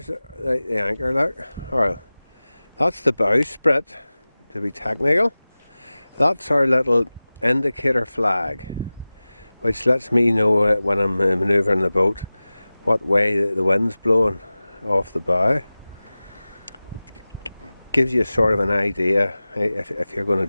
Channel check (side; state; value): both; inverted; correlation -0.98